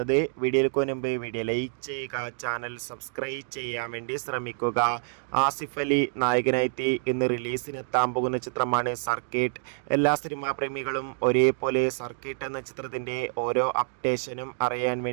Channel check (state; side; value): silent; left; digital silence